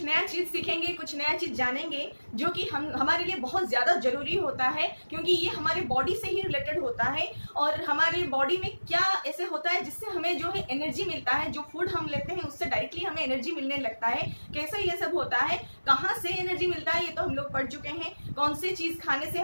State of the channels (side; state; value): both; inverted; correlation -1.00